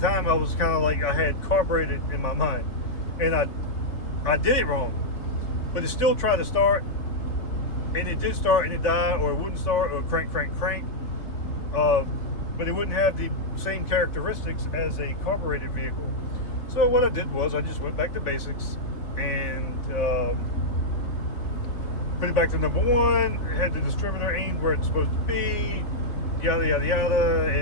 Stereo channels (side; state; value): right; late; 3.3 ms